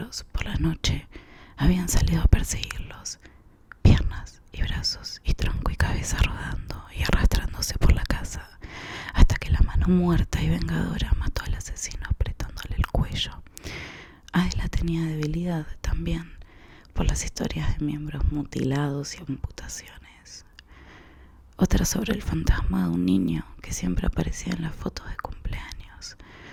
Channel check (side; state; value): both; identical; correlation 1.00